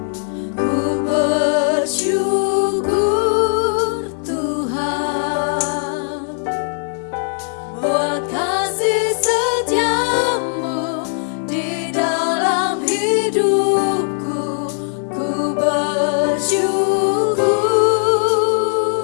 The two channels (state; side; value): silent; right; 66 dB below the other